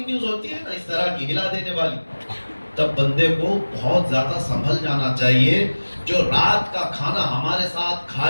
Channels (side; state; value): both; inverted; correlation -1.00